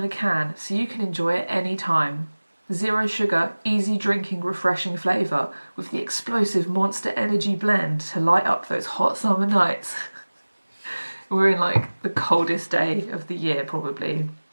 a can, so you can enjoy it any time. Zero sugar, easy drinking, refreshing flavour with the explosive Monster Energy blend to light up those hot summer nights. We're in like the coldest day of the year, probably.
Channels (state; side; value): inverted; both; correlation -1.00